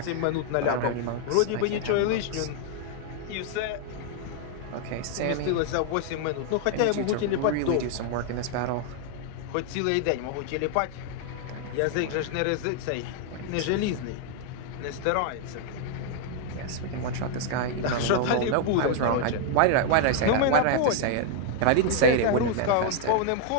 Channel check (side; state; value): both; different; correlation 0.00